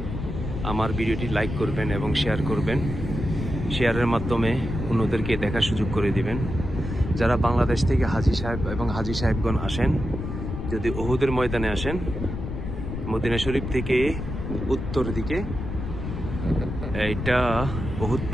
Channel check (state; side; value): noise; left; rumble, 6 dB below the sound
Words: আমার ভিডিওটি লাইক করবেন এবং শেয়ার করবেন। শেয়ারের মাধ্যমে অন্যদেরকে দেখার সুযোগ করে দিবেন। যারা বাংলাদেশ থেকে হাজী সাহেব এবং হাজী সাহেবগণ আসেন, যদি উহুদের ময়দানে আসেন, মদিনা শরীফ থেকে উত্তর দিকে এটা উহুদ